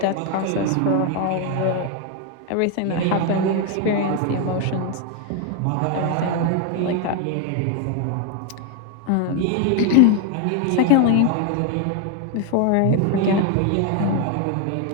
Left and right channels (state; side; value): different; both; correlation 0.01